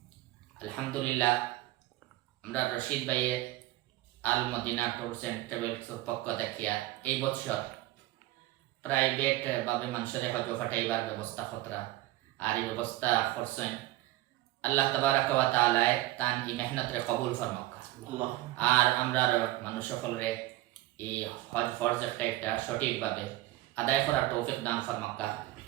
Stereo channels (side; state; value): left; quieter; 17.1 dB